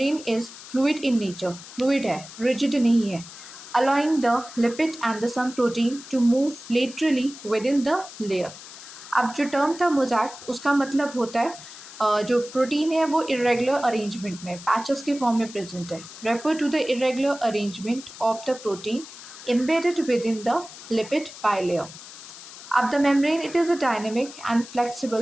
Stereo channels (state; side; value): noise; left; hiss, 15 dB below the sound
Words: is fluid in nature, fluid है, रिजिड नहीं है, allowing the lipid and the some protein to move laterally within the layer। अब जो टर्म था मोज़ैक उसका मतलब होता है जो प्रोटीन है वो इरेगुलर अरेंजमेंट में पैचेस के फॉर्म में प्रेजेंट है। Refer to the irregular arrangement of the protein embedded within the lipid bilayer। अब the membrane it is a dynamic and